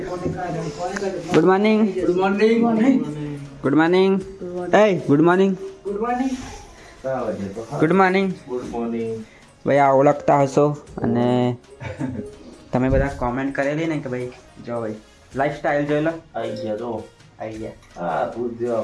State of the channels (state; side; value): identical; both; correlation 1.00